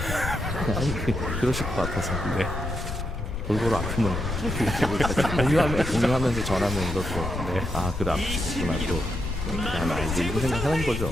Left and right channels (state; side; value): noise; left; rumble, 5 dB below the sound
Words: 왜? 아니 그러실 것 같아서. 네. 골고루 아프면 공유하면서 전하면서 또 네. 아 그래 아프구나 또. 야, 나 이제 이거 생각하는 거죠.